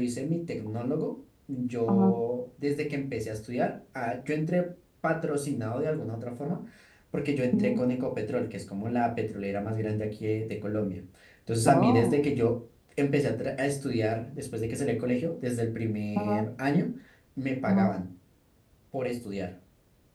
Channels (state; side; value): identical; both; correlation 1.00